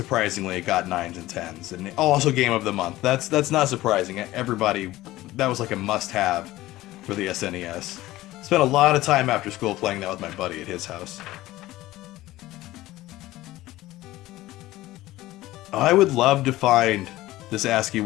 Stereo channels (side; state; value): right; quieter; 16.8 dB